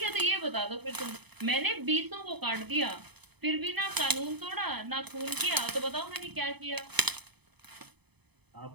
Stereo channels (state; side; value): late; left; 0.98 ms